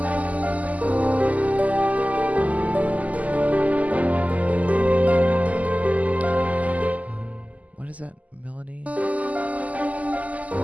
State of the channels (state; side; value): late; left; 0.073 ms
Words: What is that melody?